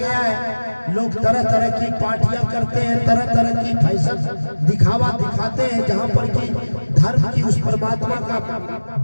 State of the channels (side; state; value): both; inverted; correlation -1.00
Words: है। लोग तरह तरह की पार्टियां करते हैं, तरह तरह की फैशन दिखावा दिखाते हैं, जहां पर कि धर्म की उस परमात्मा का